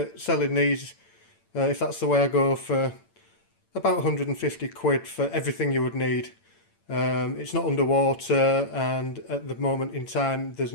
selling these, if that's the way I go, for about 150 quid for everything you would need. It's not underwater, and at the moment in time there's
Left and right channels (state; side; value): late; right; 8.9 ms